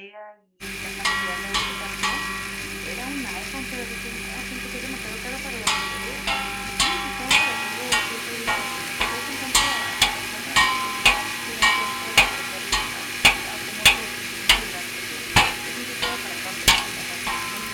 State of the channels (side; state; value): both; identical; correlation 1.00